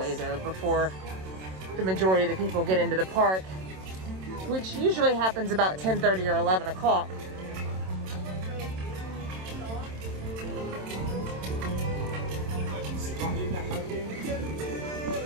though before the majority of the people get into the park, which usually happens about 10:30 or 11 o'clock.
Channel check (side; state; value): left; late; 27 ms